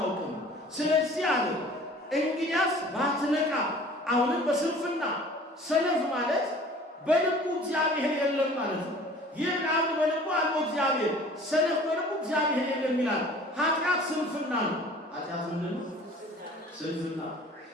ስለዚህ አለ እንግዲያስ ባትነቃ። አሁንም በስንፍና ሰነፍ ማለት በልቡ እግዚአብሔር የለም ማለት ነው። ይህ አንድ በልቡ አለው እግዚአብሔር፣ ሰነፍ በልቡ እግዚአብሔር የለም ይላል። ኃጢአት ስንፍና ነው። ኃጢአት ምንድን ነው? ስንፍና።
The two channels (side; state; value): both; normal; correlation 0.47